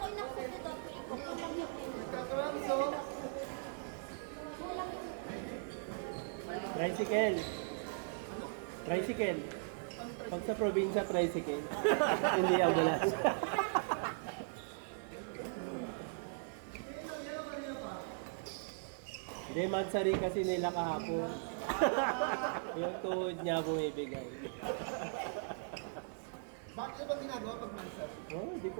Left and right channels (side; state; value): left; silent; 52 dB below the other